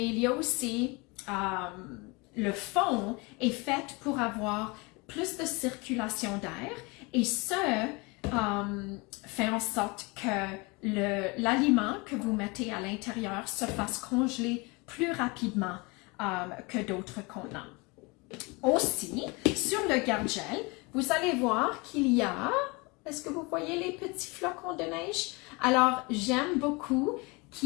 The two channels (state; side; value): quieter; right; 27.1 dB